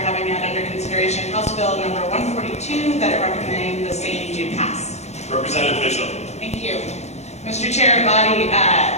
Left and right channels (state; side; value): late; right; 0.32 ms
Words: having had under consideration House Bill number 142 that I recommend the same do pass. Representative Mitchell. Thank you. Mr. Chair, body,